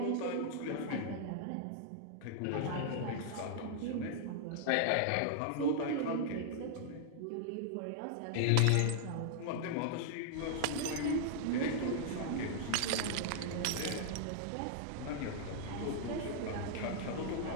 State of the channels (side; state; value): both; different; correlation -0.01